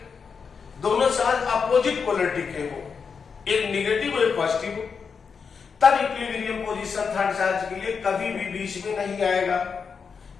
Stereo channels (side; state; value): right; quieter; 5.8 dB